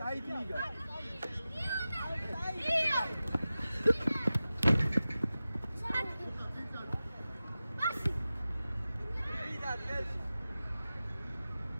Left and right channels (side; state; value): both; inverted; correlation -0.95